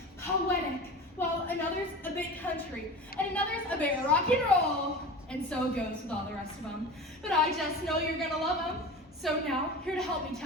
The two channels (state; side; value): normal; both; correlation 0.33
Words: poetic, while another's a bit country, and another's a bit rock and roll. And so it goes with all the rest of them. But I just know you're gonna love them. So now, here to help me